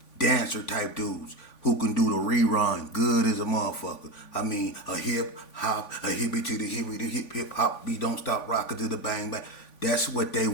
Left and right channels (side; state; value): right; late; 3.5 ms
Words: dancer type dudes who can do the rerun good as a motherfucker. I mean, a hip hop, a hippie to the hippie, the hip hop beat, don't stop rockin' to the bang bang. That's what they